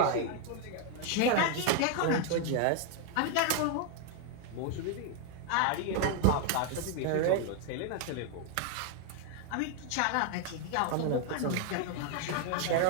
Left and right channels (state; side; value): different; both; correlation 0.00